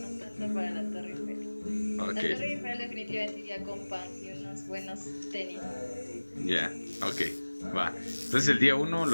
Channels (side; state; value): both; inverted; correlation -1.00